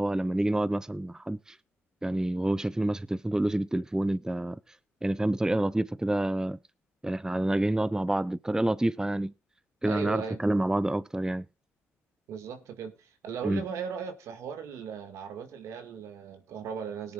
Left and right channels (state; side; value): normal; both; correlation 0.97